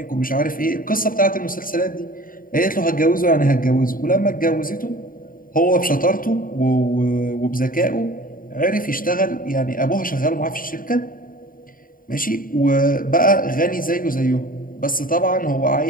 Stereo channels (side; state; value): right; late; 0.41 ms